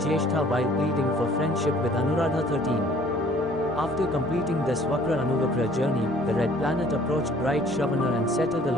while pleading for friendship with Anuradha 13. After completing this Vakra Anuvakra journey, the red planet approached bright Shravana and settled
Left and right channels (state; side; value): normal; both; correlation 0.55